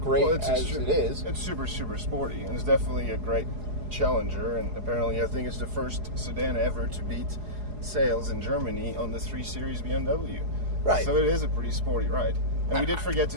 great as it is. It's super, super sporty, and it's definitely a great challenger, and apparently I think it's the first sedan ever to beat sales in Germany on the 3 Series BMW. Right. So it is a pretty sporty ride. And we did forget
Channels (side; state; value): left; late; 4.8 ms